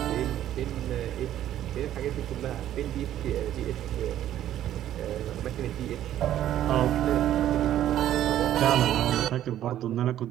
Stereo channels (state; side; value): quieter; left; 12.0 dB